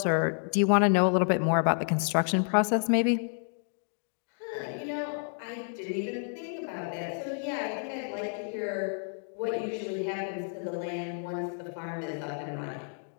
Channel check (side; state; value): right; silent; 58 dB below the other